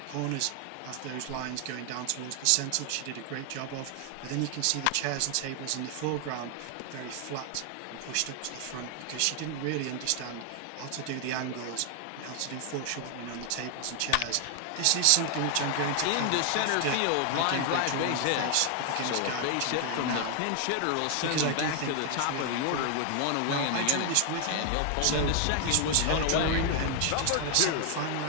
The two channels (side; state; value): both; different; correlation 0.00